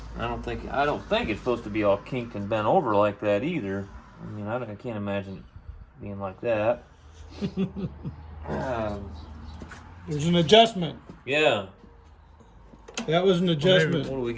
don't think it's supposed to be all kinked and bent over like that either. I mean, I can't imagine it being like that. There's an adjustment. Yeah. That was an adjustment. What do we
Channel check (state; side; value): identical; both; correlation 1.00